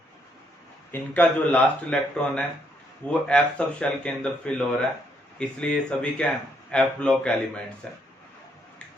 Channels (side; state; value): both; normal; correlation 0.73